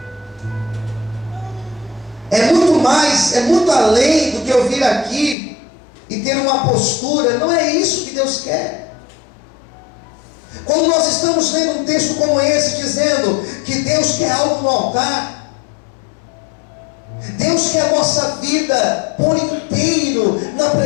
É muito mais, é muito além do que eu vir aqui e ter uma postura. Não é isso que Deus quer. Quando nós estamos lendo um texto como esse, dizendo que Deus quer algo no altar, Deus quer a nossa vida por inteiro na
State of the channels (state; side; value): drops out; right; at 5.4 s